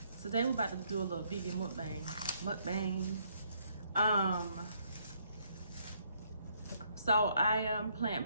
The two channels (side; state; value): both; inverted; correlation -0.70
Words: today we're about to do a little vegan mukbang. So I am